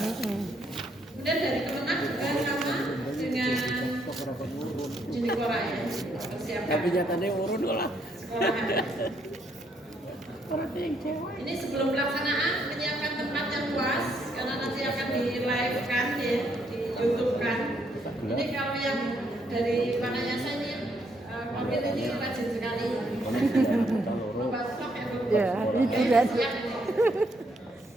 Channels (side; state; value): both; normal; correlation 0.73